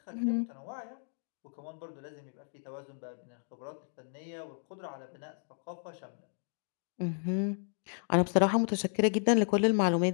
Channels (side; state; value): right; silent; digital silence